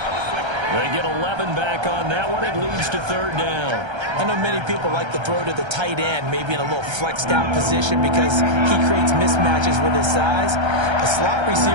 get 11 back on that one. It leads to 3rd down. I know many people like to throw to the tight end, maybe in a little flexed out position because he creates mismatches with his size. The slot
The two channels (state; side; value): late; left; 1.3 ms